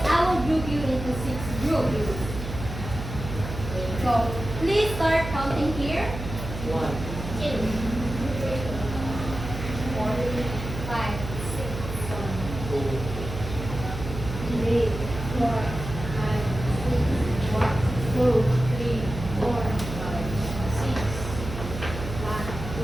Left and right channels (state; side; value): noise; right; hum, 8 dB below the sound